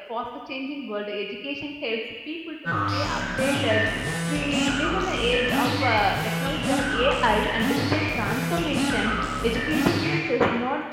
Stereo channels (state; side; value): identical; both; correlation 1.00